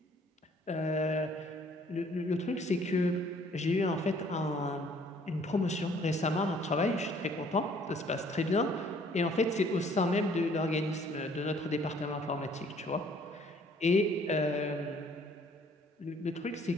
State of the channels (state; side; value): normal; both; correlation 0.59